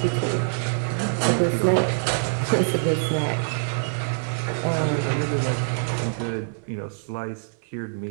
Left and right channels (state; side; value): silent; left; 62 dB below the other